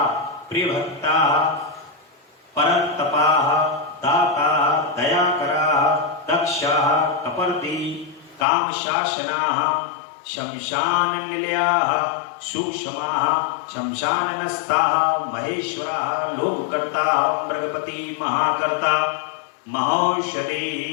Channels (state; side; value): drops out; right; at 8.5 s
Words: प्रिय भक्ता, परतपा, दाता, दयाकरा, दक्षा, कपर्दी, काम शासना, शमशान निलया, सूक्ष्मा, शमशाननस्था, महेश्वरा, लोककर्ता, मृगपति, महाकर्ता, महौषधि,